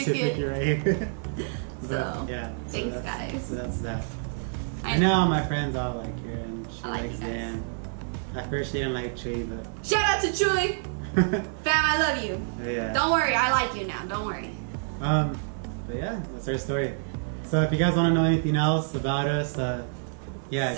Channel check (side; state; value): left; silent; digital silence